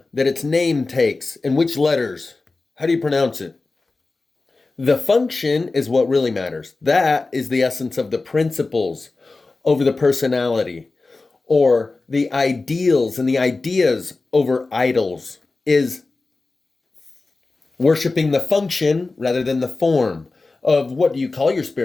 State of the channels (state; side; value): quieter; right; 3.6 dB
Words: that its name takes, and which letters. How do you pronounce it? The function is what really matters. That is the essence of the principles over the personality, or the ideals and the ideas over idols, is worshiping the function rather than the form of what do you call your